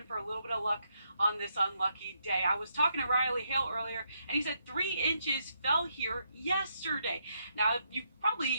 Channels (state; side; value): inverted; both; correlation -0.78